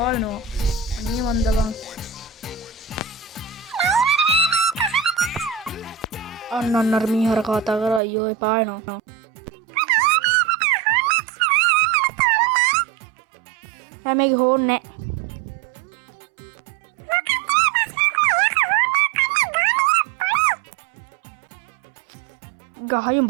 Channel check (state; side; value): drops out; left; at 8.0 s